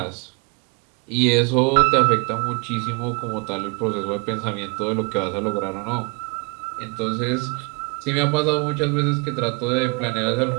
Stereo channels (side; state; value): left; quieter; 31.9 dB